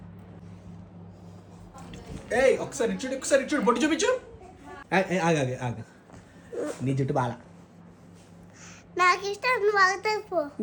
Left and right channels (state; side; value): identical; both; correlation 1.00